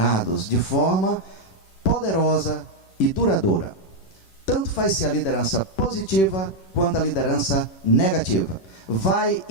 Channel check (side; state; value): right; late; 11 ms